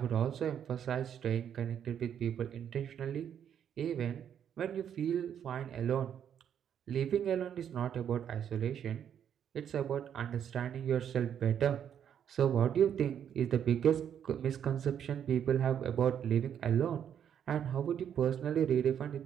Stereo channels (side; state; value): left; quieter; 8.9 dB